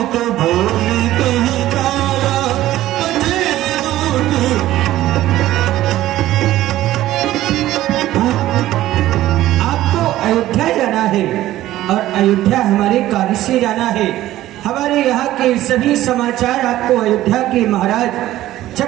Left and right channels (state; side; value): quieter; left; 14.7 dB